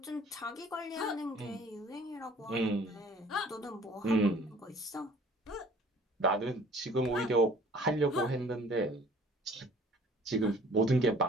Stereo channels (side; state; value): both; normal; correlation 0.52